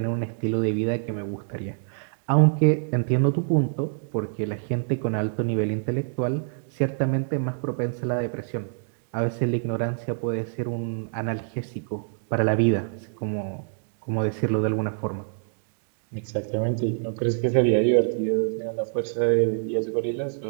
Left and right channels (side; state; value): left; silent; digital silence